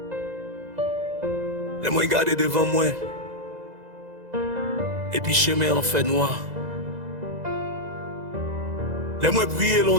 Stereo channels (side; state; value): left; late; 2.0 ms